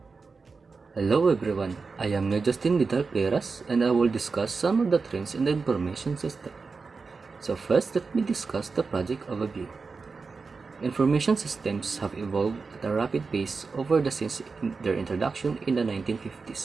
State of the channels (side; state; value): left; quieter; 4.5 dB